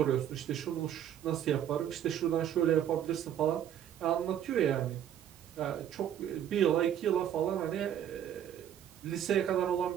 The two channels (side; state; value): left; quieter; 10.1 dB